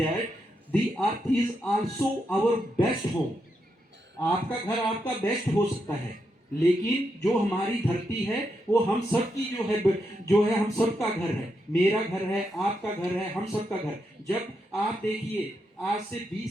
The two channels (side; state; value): both; normal; correlation 0.83